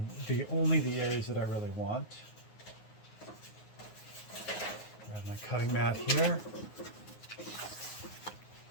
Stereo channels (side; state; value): right; late; 9.5 ms